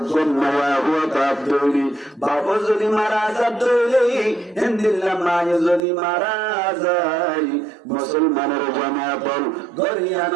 হুয়া তাপ দইলি বাবা যদি মারা যা দইলি হিন্দিল্লা মায়ে যদি মারা যায় মুসলমানের জামাতল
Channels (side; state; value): left; drops out; at 5.8 s